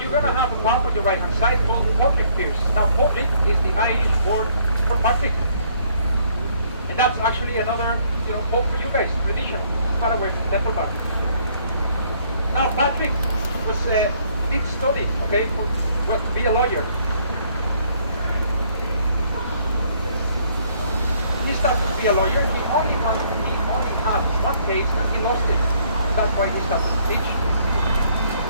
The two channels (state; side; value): inverted; both; correlation -0.65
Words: going to have a pub on your right-hand side called Patrick Pierce. Now, Patrick is the Irish word for Patrick. And that's actually another, hope for you guys, traditional, far away from Templebar. Now, Patrick did study, okay, to be a lawyer. He started to be a lawyer. He only had one case and he lost it. And that's why he started to teach.